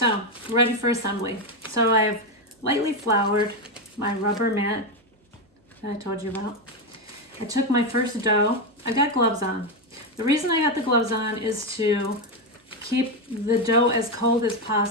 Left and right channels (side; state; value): both; normal; correlation 0.08